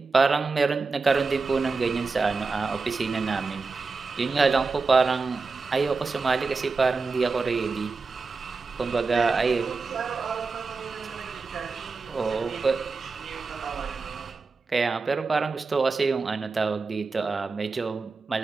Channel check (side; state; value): left; quieter; 4.3 dB